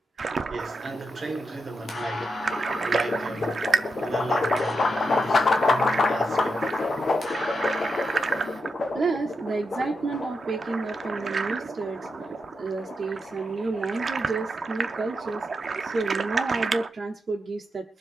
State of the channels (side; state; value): both; normal; correlation 0.85